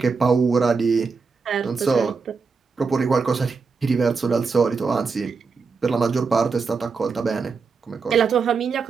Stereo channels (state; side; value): quieter; left; 4.9 dB